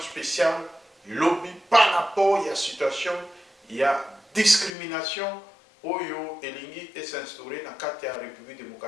lobby par rapport à la situation, il y a discrimination oyo elingi et s'instaurer dans la République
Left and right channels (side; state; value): right; drops out; at 4.7 s